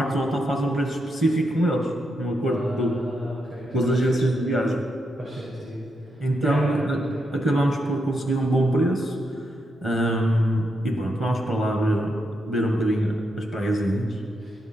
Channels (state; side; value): normal; both; correlation 0.82